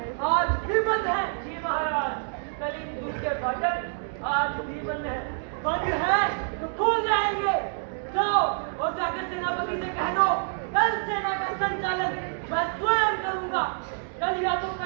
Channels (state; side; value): silent; left; 60 dB below the other